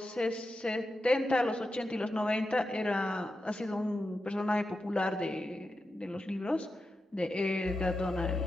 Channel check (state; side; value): normal; both; correlation 0.90